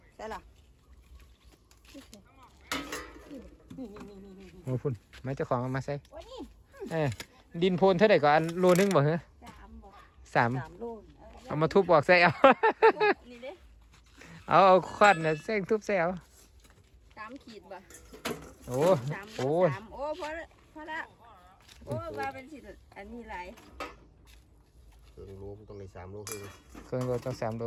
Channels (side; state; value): both; identical; correlation 1.00